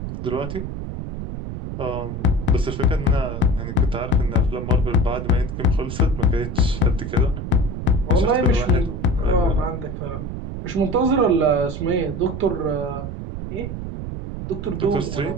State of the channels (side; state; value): right; noise; rumble, 6 dB below the sound